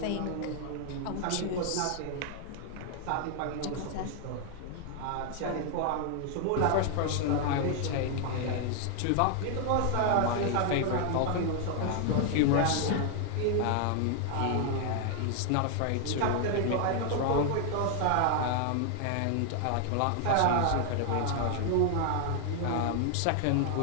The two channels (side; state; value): both; different; correlation 0.00